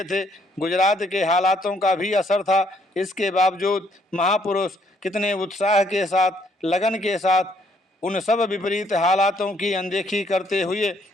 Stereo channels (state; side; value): normal; both; correlation 0.68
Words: थे। गुजरात के हालातों का भी असर था। इसके बावजूद महापुरुष कितने उत्साह के साथ, लगन के साथ उन सब विपरीत हालातों की अनदेखी करते हुए